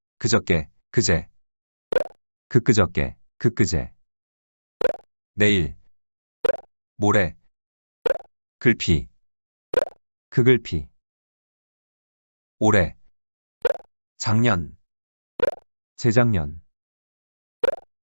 그저께, 그제, 그끄저께, 그끄제. 내일, 모레, 글피, 그글피. 올해, 작년, 재작년,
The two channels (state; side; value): inverted; both; correlation -1.00